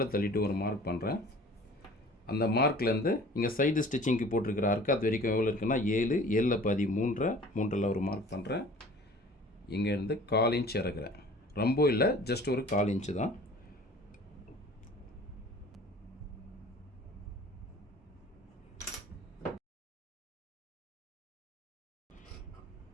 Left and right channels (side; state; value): both; normal; correlation 0.46